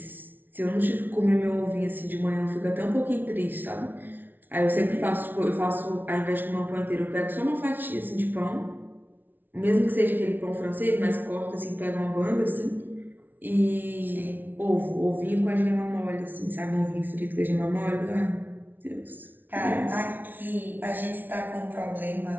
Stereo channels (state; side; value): late; left; 0.089 ms